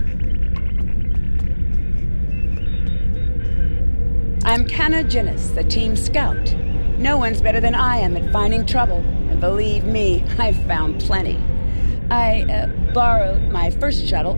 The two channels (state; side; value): inverted; both; correlation -1.00